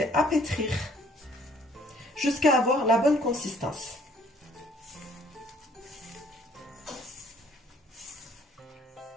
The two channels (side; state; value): both; normal; correlation 0.60